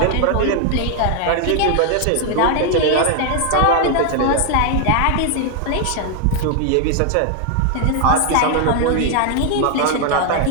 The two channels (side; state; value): both; different; correlation 0.00